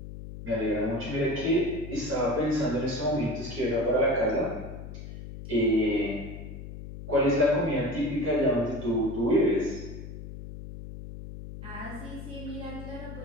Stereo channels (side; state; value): left; noise; hum, 11 dB below the sound